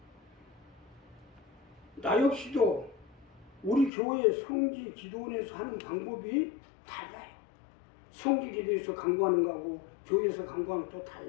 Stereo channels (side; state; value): right; drops out; at 3.9 s